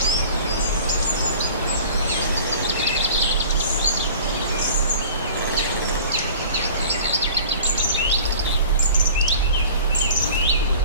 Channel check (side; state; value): both; inverted; correlation -0.44